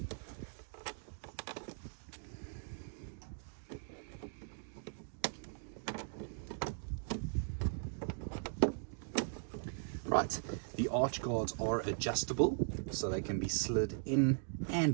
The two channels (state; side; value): silent; left; digital silence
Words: Right, the arch guards are adjustable, so they can be slid in